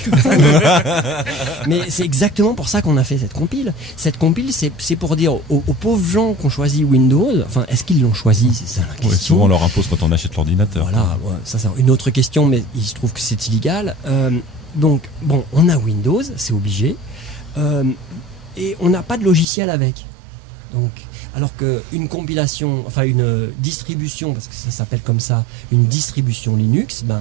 comme ça. Mais c'est exactement pour ça qu'on a fait cette compile. Cette compile, c'est pour dire aux pauvres gens qui ont choisi Windows, enfin, est-ce qu'ils l'ont choisi? C'est ça la question. Ouais, souvent on leur impose quand on achète l'ordinateur. Voilà, ouais, ça c'est une autre question, mais il se trouve que c'est illégal. Donc, bon, on a Windows, c'est obligé, et on n'a pas de logiciel avec. Donc, alors qu'une compilation, enfin une distribution, parce que ça s'appelle comme ça, une distribution Linux, ben,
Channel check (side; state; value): left; drops out; at 19.5 s